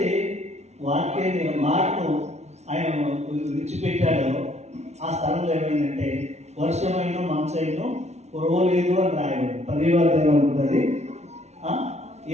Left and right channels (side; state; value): left; late; 0.32 ms